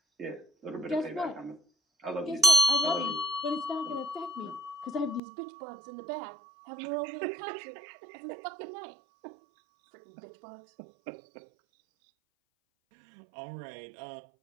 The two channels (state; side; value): drops out; left; at 5.2 s